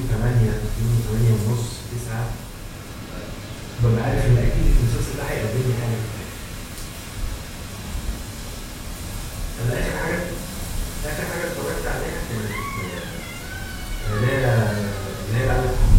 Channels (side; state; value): both; identical; correlation 1.00